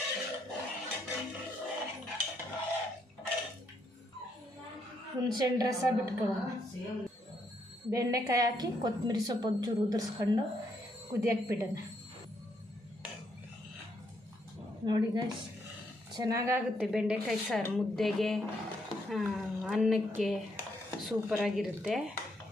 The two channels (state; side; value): normal; both; correlation 0.75